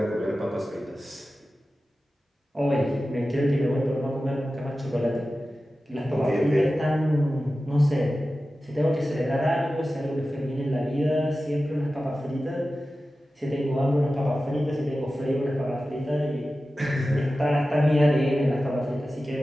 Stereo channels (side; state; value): both; normal; correlation 0.94